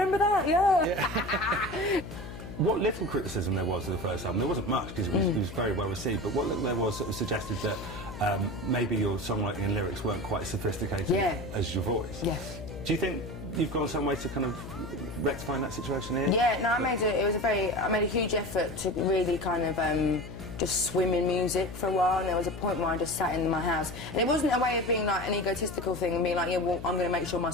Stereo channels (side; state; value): left; noise; hum, 11 dB below the sound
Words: that, yeah. What little criticism there was of the first album, there wasn't much because it was very well received, but what little there was sort of suggested that maybe your songwriting and lyrics weren't quite as sophisticated as your voice. Yes. Do you think you've gone some way to kind of rectifying that situation here? Yeah, no, I made a huge effort to really kind of just swim in music for a while, and there was a point where I just sat in my house, and it wasn't a way of being like an egotistical thing and being like, yeah, well, I'm going to make sure my